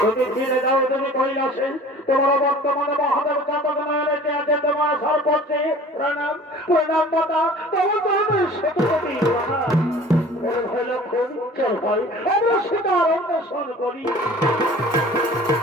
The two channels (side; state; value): both; normal; correlation 0.46